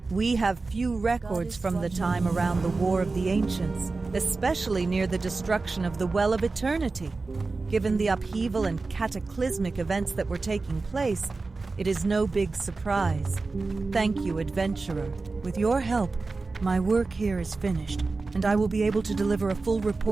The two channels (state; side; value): quieter; left; 3.8 dB